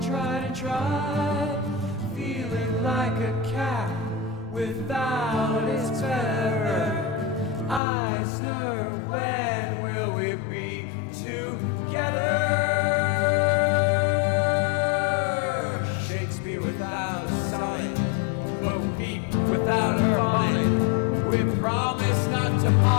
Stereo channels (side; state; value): right; drops out; at 7.8 s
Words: tried and tried. Feeling like a cat without its terror. Eisner, when will we be together? Shakespeare without a sonnet, Bo Peep without her bonnet. We promise not to